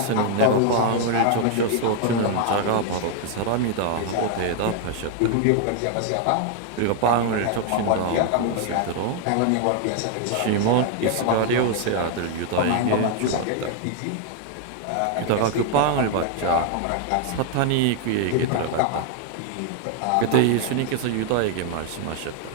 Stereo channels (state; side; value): different; both; correlation 0.00